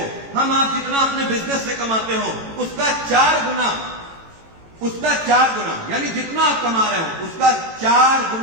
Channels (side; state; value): left; late; 18 ms